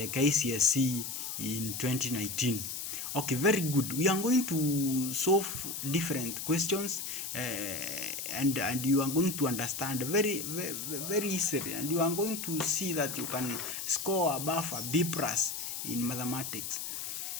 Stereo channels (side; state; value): left; noise; hiss, 5 dB below the sound